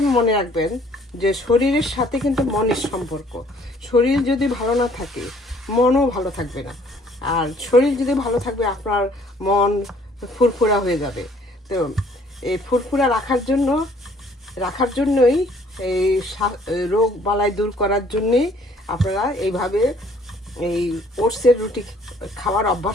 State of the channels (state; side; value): normal; both; correlation 0.59